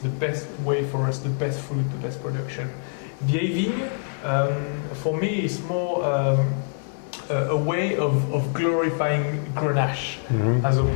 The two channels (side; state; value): right; silent; digital silence